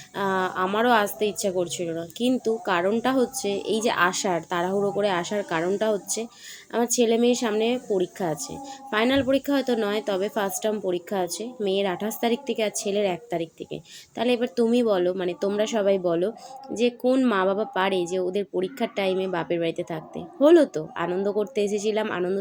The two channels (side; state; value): both; identical; correlation 1.00